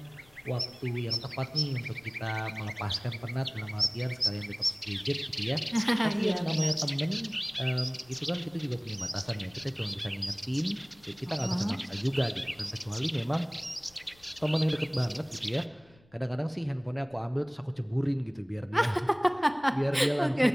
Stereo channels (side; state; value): left; noise; rumble, 29 dB below the sound